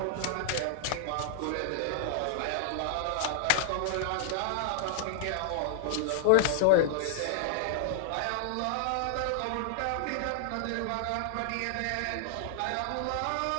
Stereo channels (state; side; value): different; both; correlation -0.01